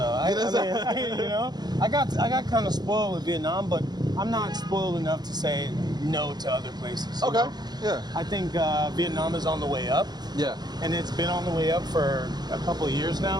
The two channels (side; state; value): left; late; 0.20 ms